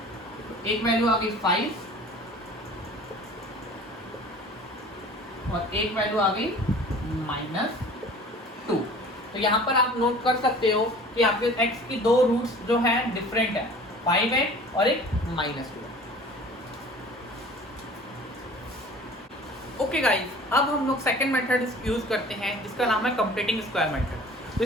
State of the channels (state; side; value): normal; both; correlation 0.45